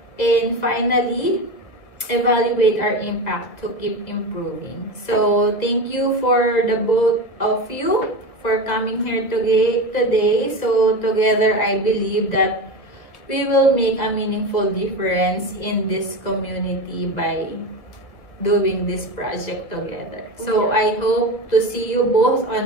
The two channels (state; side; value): late; right; 2.0 ms